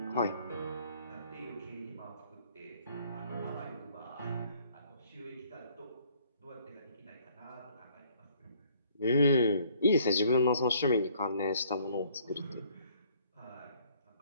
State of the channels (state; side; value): inverted; both; correlation -0.61